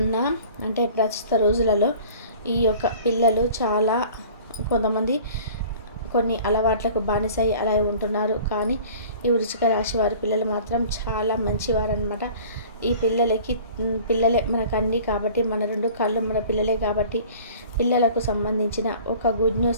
అంటే ప్రస్తుత రోజులలో ఈ యొక్క పిల్లలు చాలా కొంతమంది కొన్ని అలవాట్లకు బానిసై అలా ఉంటున్నారు. కానీ ఈ వృశ్చిక రాశి వారి పిల్లలు మాత్రం చాలా మంచివారు అనమాట. ఈ పిల్లలే మనకు అన్నీ కాబట్టి, మన 2 కళ్ళు మన పిల్లలే కాబట్టి, పిల్లలకు సంబంధించిన ఒక గుడ్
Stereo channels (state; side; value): inverted; both; correlation -0.46